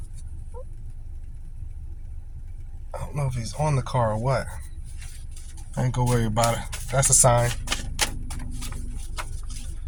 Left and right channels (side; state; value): both; identical; correlation 1.00